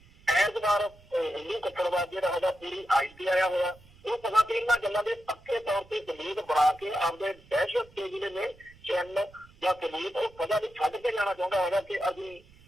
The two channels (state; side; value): noise; right; rumble, 26 dB below the sound